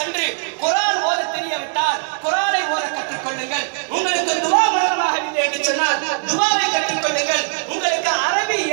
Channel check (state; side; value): silent; left; digital silence